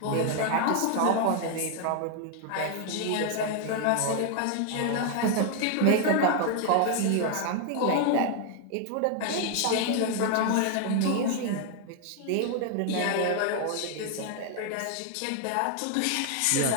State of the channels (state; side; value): different; both; correlation 0.00